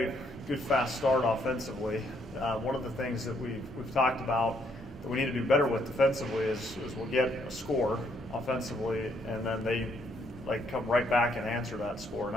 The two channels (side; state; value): both; normal; correlation 0.71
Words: good fast start offensively. One of the things that we've talked about that we need to do better with defensively is we'll get a score offensively, and then they come right back and answer that score, and